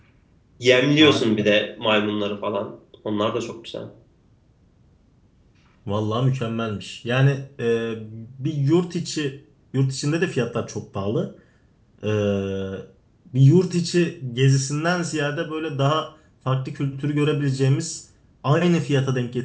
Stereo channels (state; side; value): identical; both; correlation 1.00